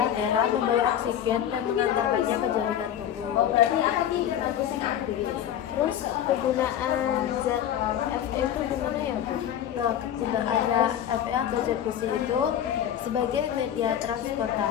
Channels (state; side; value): quieter; right; 10.3 dB